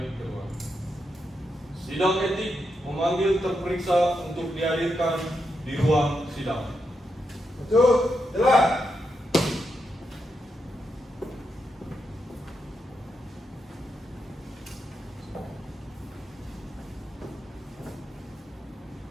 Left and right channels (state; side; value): normal; both; correlation 0.84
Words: Ketua. Sidang etik memanggil terperiksa untuk dihadirkan di ruang sidang. Betul, jelas.